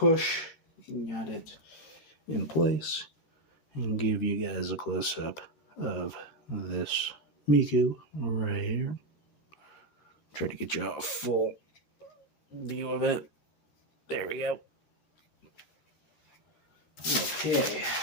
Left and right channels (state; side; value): late; right; 13 ms